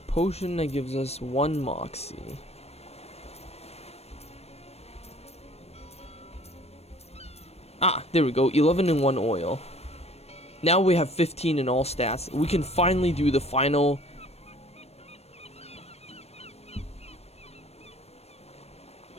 potion that gives us 1 Moxie. Ah, there we go. 11 in 1 oil. Now we have 15 in all stats. We can finally do the final.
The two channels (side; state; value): right; late; 0.31 ms